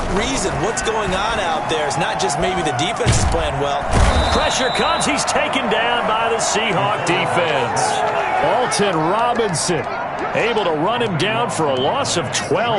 reason, what's going on out there. It's not just maybe the defense is playing well. Pressure comes. He's taken down by the Seahawk defense. Alton Robinson able to run him down for a loss of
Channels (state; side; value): identical; both; correlation 1.00